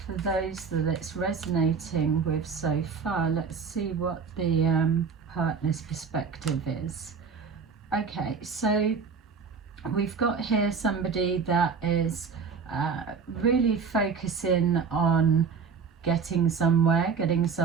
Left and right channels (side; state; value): left; quieter; 5.7 dB